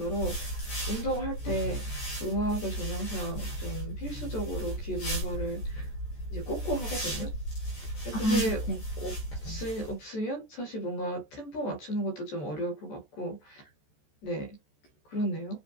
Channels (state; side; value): late; right; 14 ms